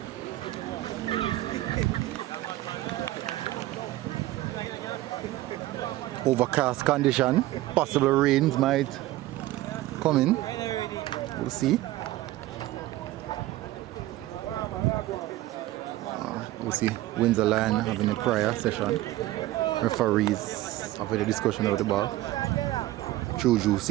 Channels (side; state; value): left; quieter; 16.3 dB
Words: Overcast condition, possible rains might come in. We'll see. We'll see Windsor Lion having a prayer session. Referees having a discussion over the ball. Juju